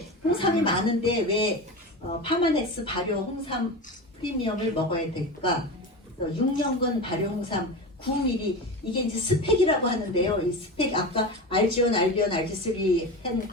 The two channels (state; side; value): normal; both; correlation 0.26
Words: 홍삼이 많은데 왜 파마넥스 발효 홍삼 프리미엄을 먹어야 될까? 6년근 발효 홍삼 9ml 이게 이제 스펙이라고 하는데요. 이 스펙 아까 알지온, 알비온, 알지3 한